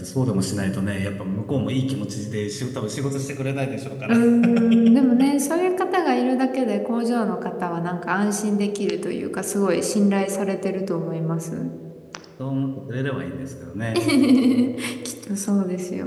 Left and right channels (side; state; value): both; identical; correlation 1.00